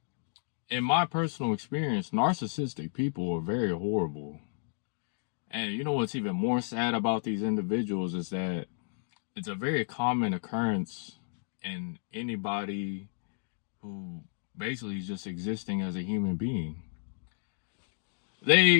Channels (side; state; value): right; silent; digital silence